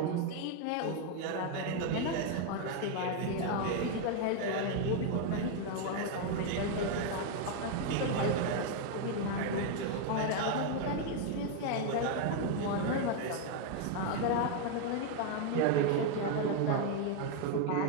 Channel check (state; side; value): different; both; correlation 0.01